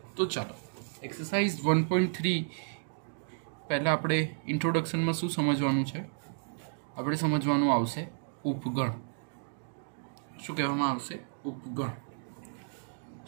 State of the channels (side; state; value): left; silent; digital silence